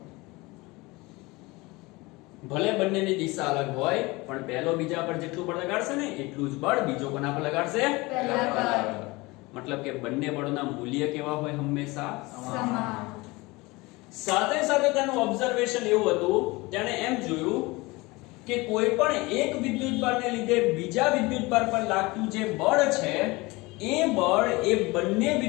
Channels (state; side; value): quieter; right; 23.1 dB